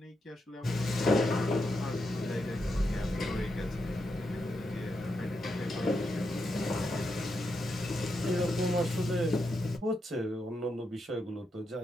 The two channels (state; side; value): normal; both; correlation 0.84